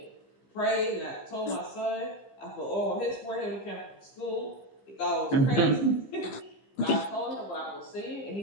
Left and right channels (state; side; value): late; right; 15 ms